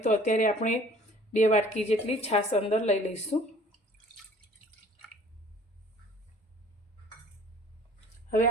अत्यारे आपणे 2 वाटकी जेटली छाश अंदर लई लईशुं। हवे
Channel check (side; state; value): both; normal; correlation 0.52